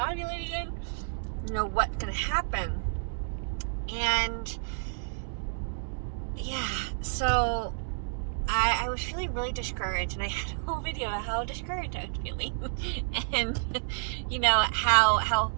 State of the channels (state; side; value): silent; left; digital silence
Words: ovulate again? What's going to happen? And yeah, so I was feeling really discouraged, and I had a whole video of how discouraged I was feeling and how